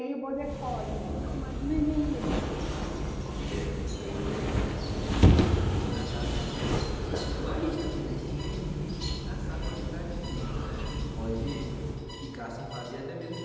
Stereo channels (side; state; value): both; identical; correlation 1.00